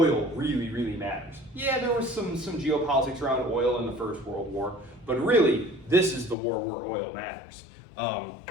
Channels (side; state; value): right; drops out; at 6.4 s